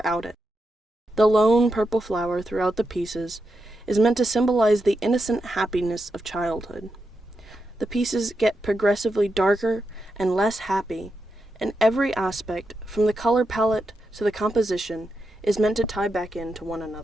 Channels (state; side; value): normal; both; correlation 0.86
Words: it. The lone purple flower throughout the pieces is meant to symbolize the innocent happiness of childhood. The pieces get progressively darker and less happy, and every aspect, from the color palette to the composition, is meant to tie back into one